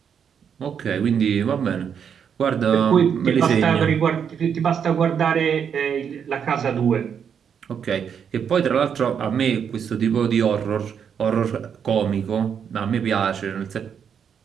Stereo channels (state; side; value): quieter; left; 7.6 dB